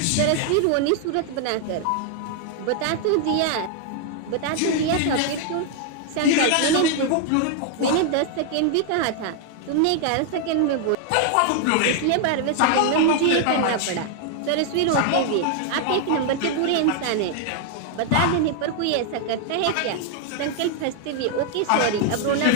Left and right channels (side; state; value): both; different; correlation 0.00